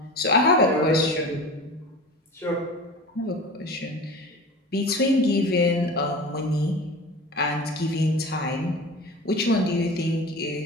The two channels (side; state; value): both; normal; correlation 0.34